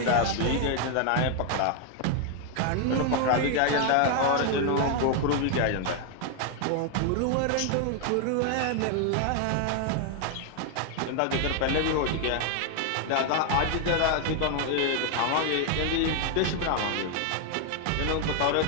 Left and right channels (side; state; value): both; different; correlation 0.00